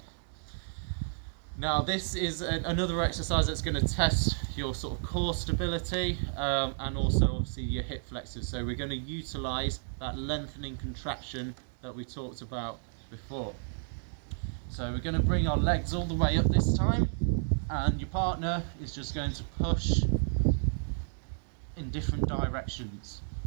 Now this is another exercise that's going to test your sort of core stability and also obviously your hip flexors. So we're going to utilize that lengthening contraction that we talked about before. So we're going to bring our legs all the way up this time, and your partner is just going to push in different directions.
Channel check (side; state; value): left; silent; digital silence